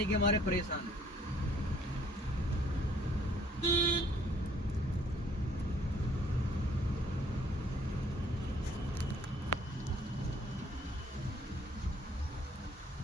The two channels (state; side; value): normal; both; correlation 0.61